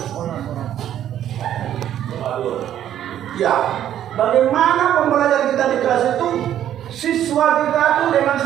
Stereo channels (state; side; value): quieter; left; 11.0 dB